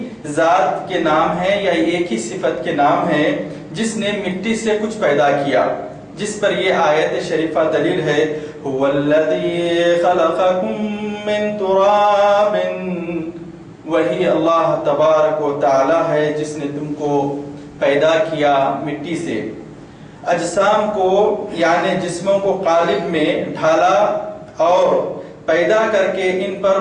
ذات کے نام ہیں یا ایک ہی صفت کے نام ہیں، جس نے مٹی سے کچھ پیدا کیا، جس پر یہ آیت شریفہ دلیل ہے. هو الذی خلقکم من تراب، وہی اللہ تبارک و تعالی ہے جس نے تم کو پیدا کیا مٹی سے. اجسام کو یعنی جسموں کو قالب میں ڈھالا اور پیدا کر کے ان پر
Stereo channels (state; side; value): identical; both; correlation 1.00